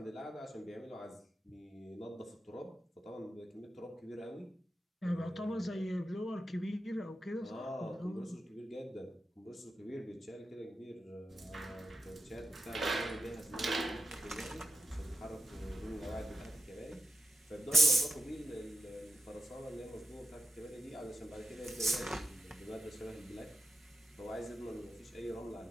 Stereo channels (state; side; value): normal; both; correlation 0.87